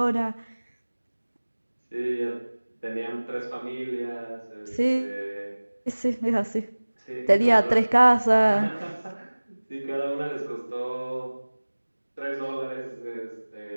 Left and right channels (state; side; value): inverted; both; correlation -1.00